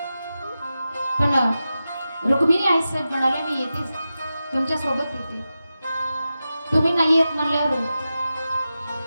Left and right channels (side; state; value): both; inverted; correlation -0.92